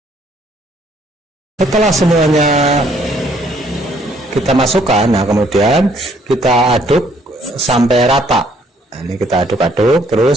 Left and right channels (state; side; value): normal; both; correlation 0.65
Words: Setelah semuanya kita masukkan, nah kemudian kita aduk sampai rata. Nah, ini kita aduk-aduk